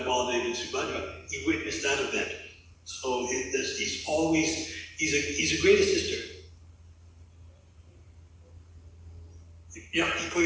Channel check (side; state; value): both; identical; correlation 1.00